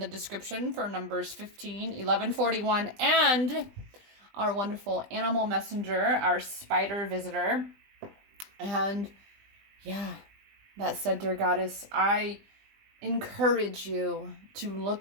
description for numbers 15, 11, 41, and our wonderful animal messenger, our spider visitor. And yeah, that said, dear Goddess, I encourage you to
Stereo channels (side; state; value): left; late; 20 ms